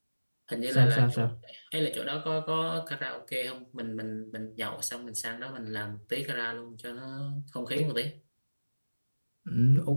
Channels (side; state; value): both; inverted; correlation -1.00